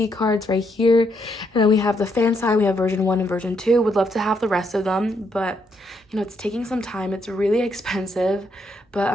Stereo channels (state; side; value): normal; both; correlation 0.76